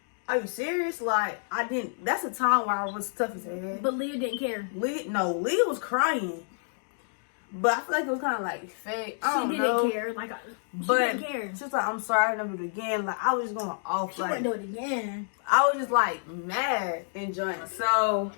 are you serious? Like, that's a time where I was tough as hell. But Leah didn't care. Leah was crying. But I feel like it was kind of like fake. I She don't didn't know. care. Like, she But didn't care. she was like, I'm sorry, I never do it again. Like, I was just going off. She Like, wouldn't do it again. I was just like mad and joint. So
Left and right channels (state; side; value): silent; right; digital silence